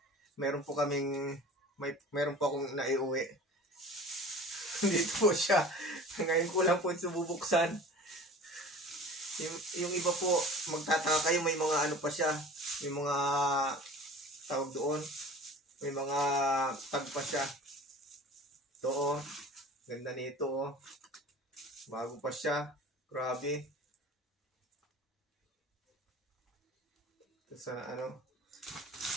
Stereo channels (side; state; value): both; normal; correlation 0.41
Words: Meron po kaming meron po akong naiuwi. Dito po siya. Ngayon ko lang po sububuksan. Yung iba po magtataka kayo, may mga ano pa siya. May mga tawag doon. May mga tag pa siya. Ito ganda nito bago pa siya. Grabe. Sa ano,